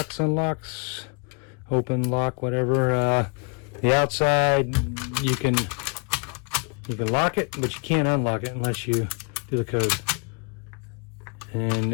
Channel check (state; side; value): quieter; right; 36.1 dB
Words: unlocks, open, lock, whatever. The outside, you can lock it, but you can't unlock it unless you do the code. And